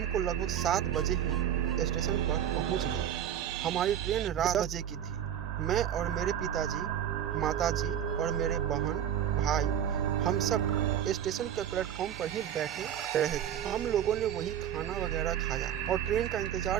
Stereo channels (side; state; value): left; quieter; 9.9 dB